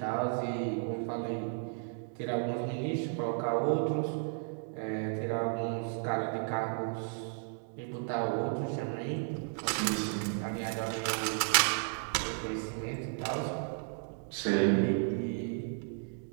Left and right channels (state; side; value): silent; left; 55 dB below the other